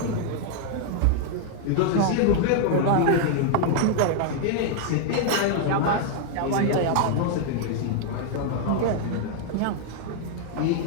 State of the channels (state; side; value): different; both; correlation 0.00